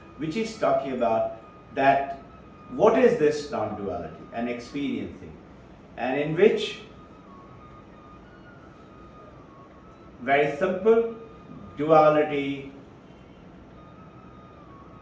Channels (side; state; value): both; identical; correlation 1.00